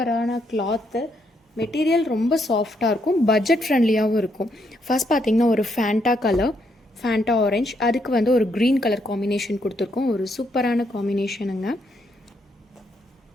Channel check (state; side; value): normal; both; correlation 0.75